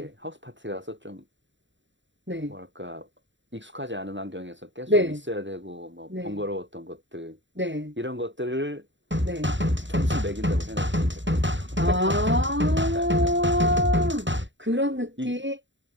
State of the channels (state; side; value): late; left; 0.54 ms